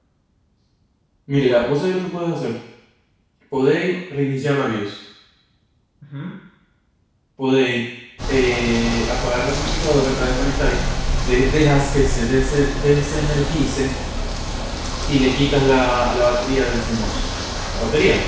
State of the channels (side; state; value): both; identical; correlation 1.00